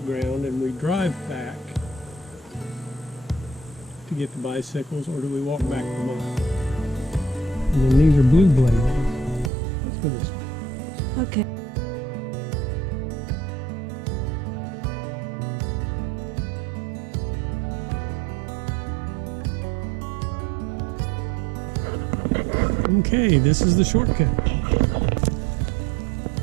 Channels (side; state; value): left; drops out; at 9.5 s